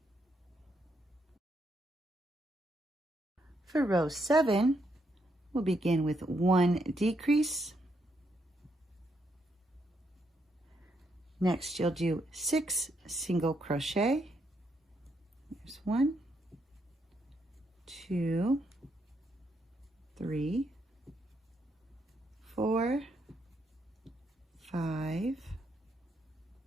For row 7, we'll begin with 1 decrease. Next, you'll do 6 single crochet. There's 1, 2, 3, 4, 5,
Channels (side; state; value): both; normal; correlation 0.77